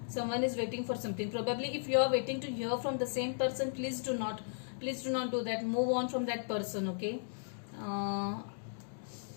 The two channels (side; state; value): right; silent; digital silence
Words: Someone is waiting for something. Probably if you are waiting to hear from the same person, please do not do that. Move on from that person. Okay,